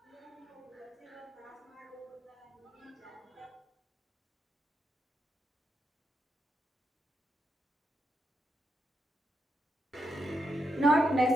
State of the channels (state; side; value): normal; both; correlation 0.83